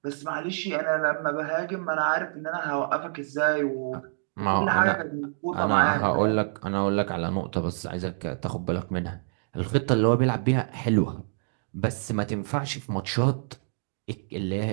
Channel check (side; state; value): left; silent; digital silence